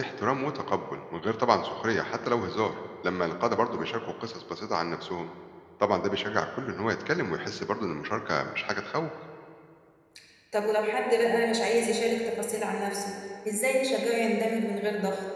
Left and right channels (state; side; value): identical; both; correlation 1.00